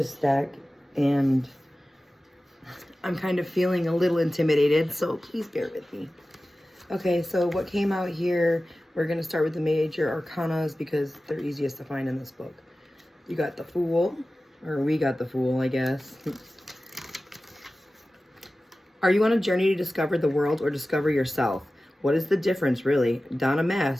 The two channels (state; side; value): normal; both; correlation 0.96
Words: deck, and I'm kind of feeling a little intimidated, so please bear with me. Okay, so what came out here, we're going to start with the major arcanas because they're easiest to find in this book. You got the Fool, or we got the Fool, I guess. Are you on a journey to discover the world or discover yourself? What is the difference, really? Don a